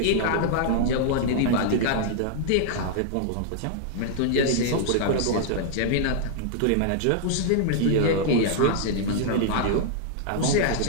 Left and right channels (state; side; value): different; both; correlation -0.01